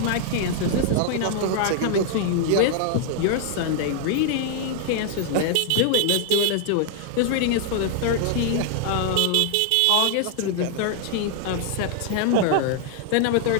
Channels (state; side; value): different; both; correlation 0.00